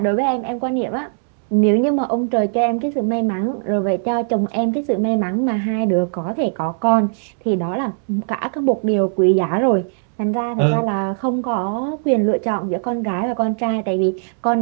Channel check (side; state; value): left; silent; 66 dB below the other